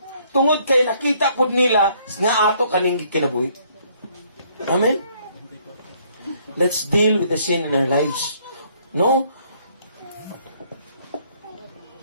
tungod kay nakita pud nila nga ato kaning kinabuhi. Amen. Let's deal with the sin in our lives. No?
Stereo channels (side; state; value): both; inverted; correlation -0.65